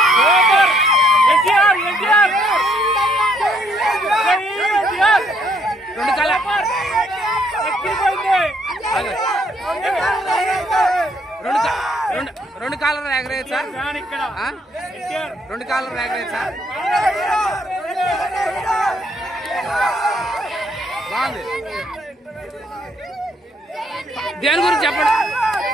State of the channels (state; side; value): normal; both; correlation 0.69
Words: ఎన్టీఆర్ ఎన్టీఆర్ రెండు కాల రెండు కాలర్ ఎగరేయచ్చా? రెండు కాలర్ ఎగరేయచ్చా? బాగుంది. దేని గురించి చెప్పండి,